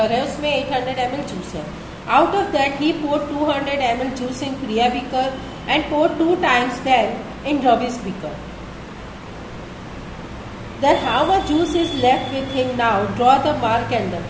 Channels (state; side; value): identical; both; correlation 1.00